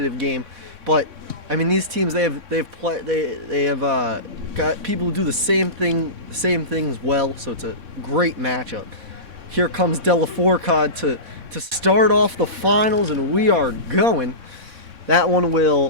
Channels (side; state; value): left; late; 3.6 ms